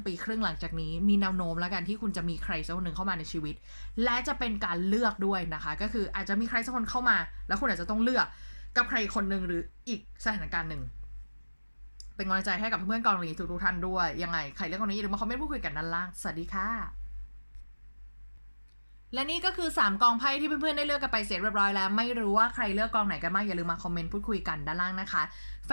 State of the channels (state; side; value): inverted; both; correlation -1.00